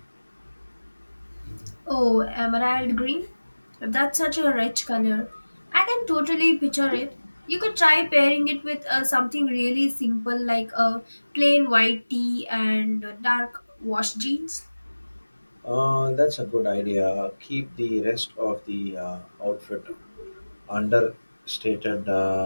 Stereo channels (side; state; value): both; inverted; correlation -1.00